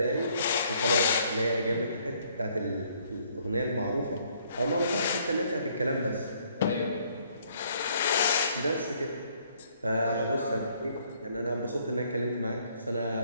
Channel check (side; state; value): both; inverted; correlation -0.65